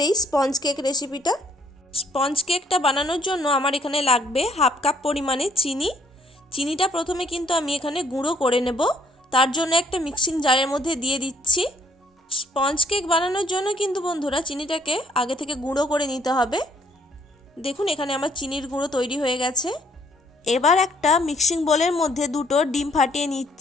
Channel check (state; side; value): normal; both; correlation 0.66